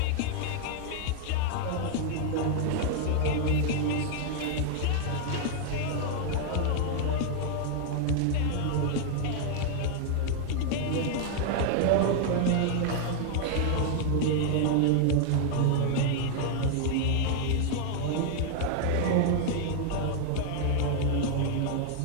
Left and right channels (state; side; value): different; both; correlation 0.00